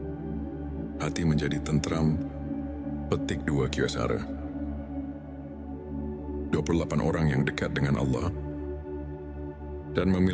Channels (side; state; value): both; identical; correlation 1.00